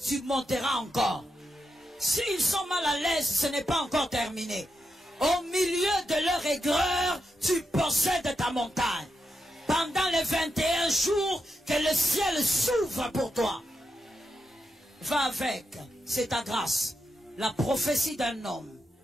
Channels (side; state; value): both; normal; correlation 0.86